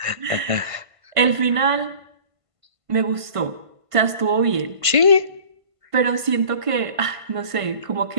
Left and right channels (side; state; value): left; late; 1.5 ms